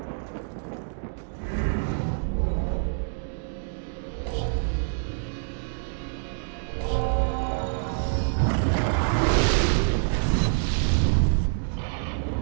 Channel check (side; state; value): left; silent; digital silence